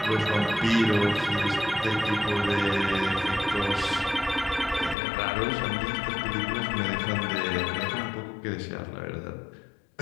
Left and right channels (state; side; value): drops out; right; at 5.0 s